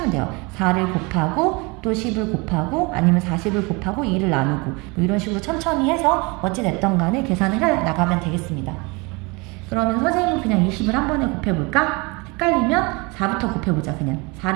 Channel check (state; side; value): quieter; left; 27.5 dB